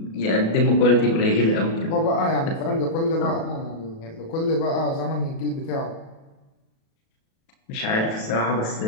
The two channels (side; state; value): right; late; 37 ms